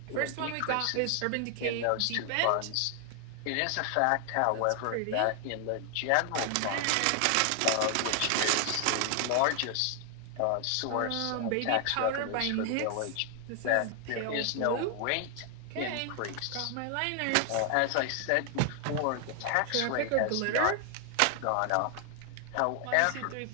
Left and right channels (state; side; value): different; both; correlation 0.00